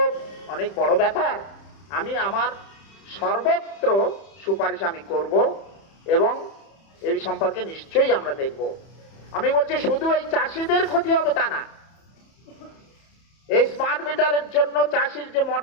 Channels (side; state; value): right; late; 31 ms